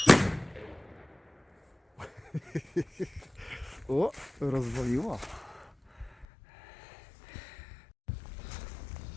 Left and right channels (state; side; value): drops out; right; at 6.2 s